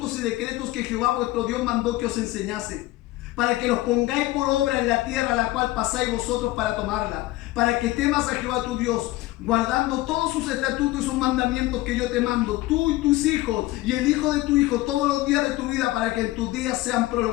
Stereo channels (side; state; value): right; quieter; 18.0 dB